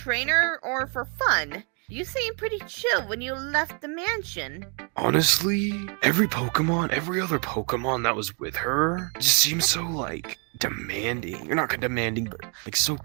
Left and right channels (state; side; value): quieter; left; 37.2 dB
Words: or for fun? You seem pretty chill when you left the mansion. Honestly, every other Pokemon that was with her just seems so, like, demanding. You're not demanding, but, like, so